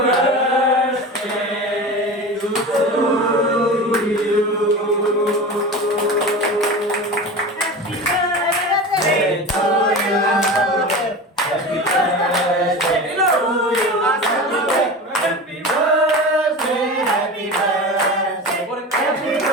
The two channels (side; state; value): both; normal; correlation 0.30